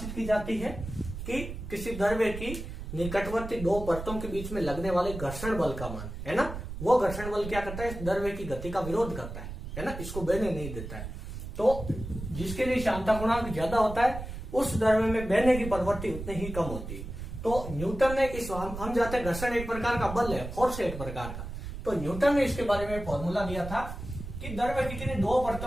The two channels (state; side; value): noise; right; rumble, 8 dB below the sound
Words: की जाती है कि किसी द्रव्य की निकटवर्ती 2 परतों के बीच में लगने वाले घर्षण बल का मान, है ना, वो घर्षण बल क्या करता है? इस द्रव्य की गति का विरोध करता है ना, इसको बहने नहीं देता है। तो जिसके लिए श्यानता गुणांक ज्यादा होता है उस द्रव्य में बहने की प्रवृत्ति उतनी ही कम होती है। तो न्यूटन ने इस हम जाते हैं घर्षण एक प्रकार का बल है, फोर्स एक प्रकार का, तो न्यूटन ने इसके बारे में फॉर्मूला दिया था कि द्रव्य की किन्हीं दो